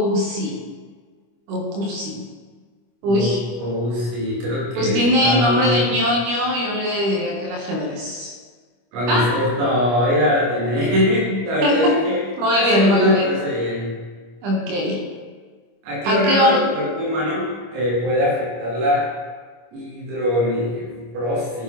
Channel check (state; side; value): late; left; 25 ms